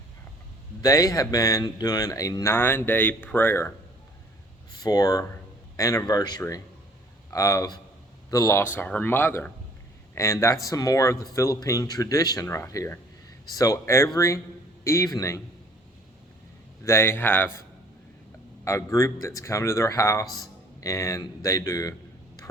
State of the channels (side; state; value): both; normal; correlation 0.56